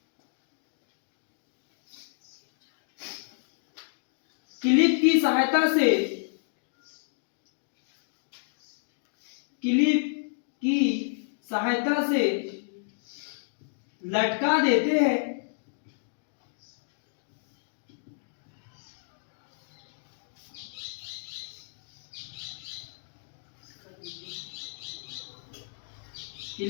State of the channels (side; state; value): right; silent; digital silence